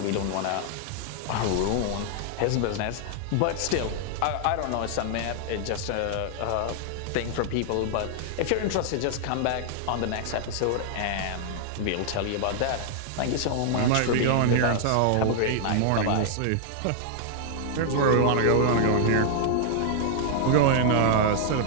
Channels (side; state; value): both; different; correlation -0.01